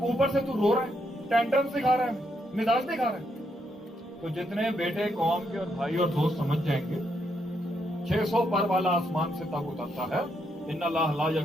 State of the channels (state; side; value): normal; both; correlation 0.78